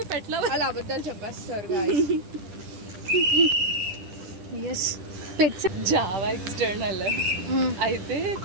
a pet lover. అలా అబద్ధాలు చెప్పేస్తారు guys. Yes. Pets. Java external అయితే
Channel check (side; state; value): left; late; 10 ms